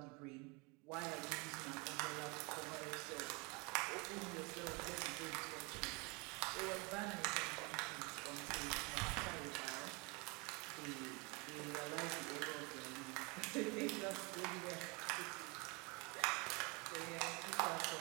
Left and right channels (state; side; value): quieter; left; 29.2 dB